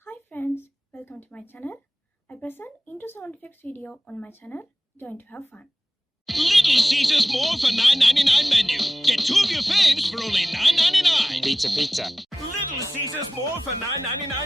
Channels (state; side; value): normal; both; correlation 0.94